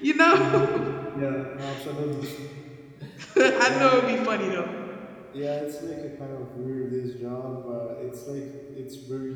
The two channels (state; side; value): identical; both; correlation 1.00